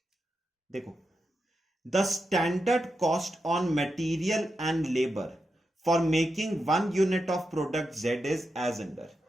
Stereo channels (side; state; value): both; normal; correlation 0.87